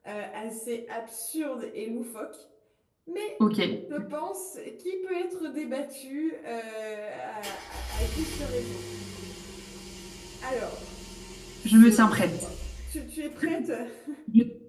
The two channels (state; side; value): identical; both; correlation 1.00